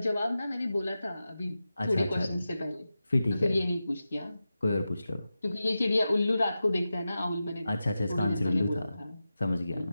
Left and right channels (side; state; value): both; inverted; correlation -0.93